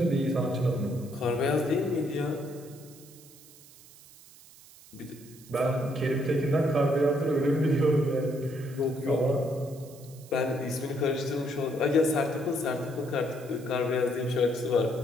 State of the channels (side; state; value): right; noise; hiss, 22 dB below the sound